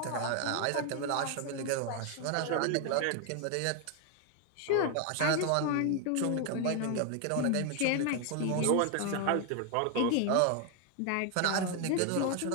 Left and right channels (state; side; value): different; both; correlation 0.01